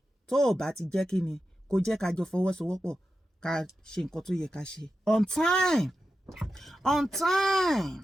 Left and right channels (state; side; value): normal; both; correlation 0.91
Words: Tó o bá ti jẹ́ kí ni, kò jẹ́ ká jọ fọwọ́sowọ́pọ̀ ká ṣe nǹkan tó yẹ ká ṣe. On time.